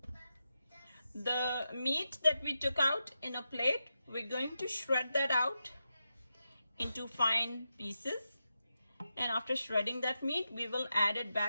The meat that we took out in a plate, we're going to shred that out into fine pieces. And after shredding that meat, we will add it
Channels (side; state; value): both; inverted; correlation -0.88